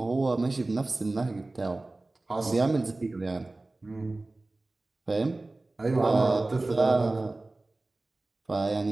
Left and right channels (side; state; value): left; quieter; 3.0 dB